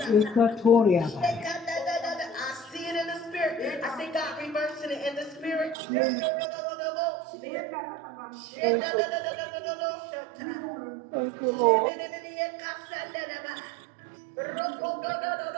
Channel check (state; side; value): drops out; left; at 5.8 s